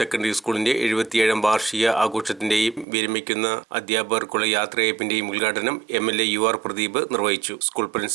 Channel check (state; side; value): drops out; left; at 2.9 s